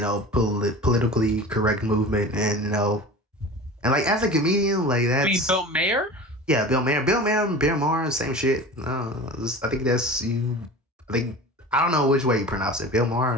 correct movement, and and like as a comedian, like I mean, that's Bill Mayer. yeah, Bill Maher, same shit. No, I think that's you. I think I don't know which way you pronounce it, Bill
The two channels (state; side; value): normal; both; correlation 0.35